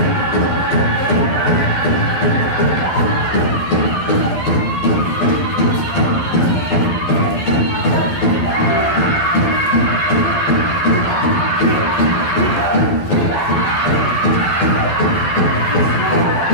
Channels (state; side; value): late; right; 12 ms